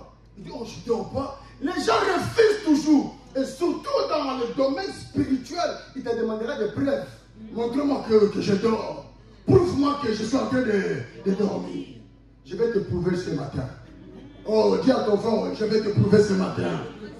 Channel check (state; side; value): identical; both; correlation 1.00